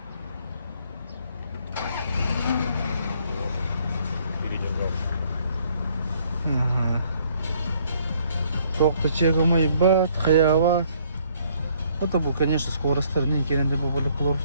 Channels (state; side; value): inverted; both; correlation -0.64